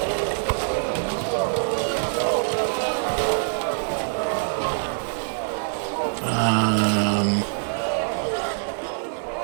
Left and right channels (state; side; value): silent; left; digital silence